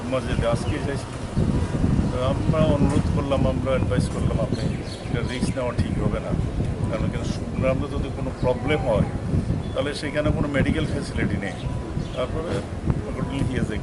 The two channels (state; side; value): identical; both; correlation 1.00